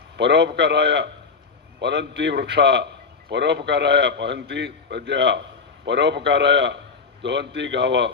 పరోపకారాయ పరంతి వృక్ష, పరోపకారాయ పహంతి ప్రజ, పరోపకారాయ దోహంతి గావ,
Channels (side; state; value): right; quieter; 5.0 dB